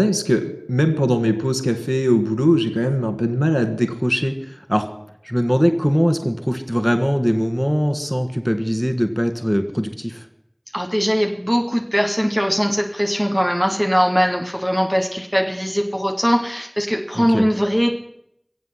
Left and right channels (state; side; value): identical; both; correlation 1.00